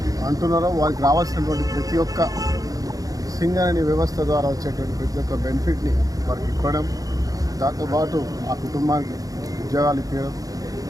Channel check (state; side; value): late; left; 0.17 ms